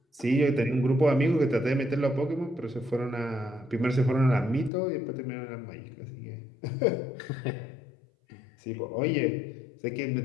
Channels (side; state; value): right; drops out; at 4.7 s